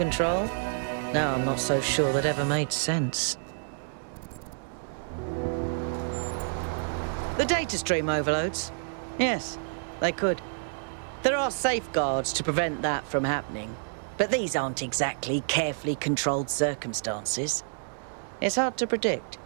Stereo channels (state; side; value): silent; left; digital silence